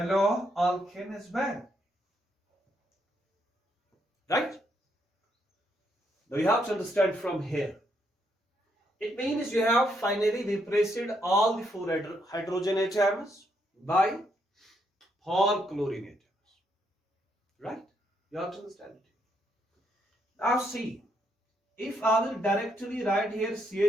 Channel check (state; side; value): normal; both; correlation 0.75